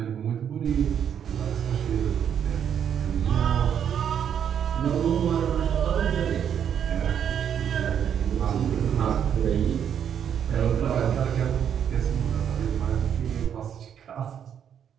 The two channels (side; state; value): left; quieter; 8.6 dB